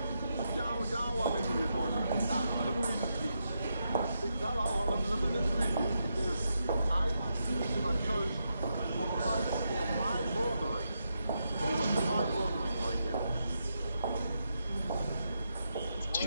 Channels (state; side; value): inverted; both; correlation -0.83